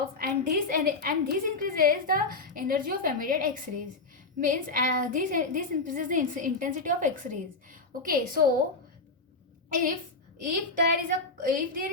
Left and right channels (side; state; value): right; quieter; 3.5 dB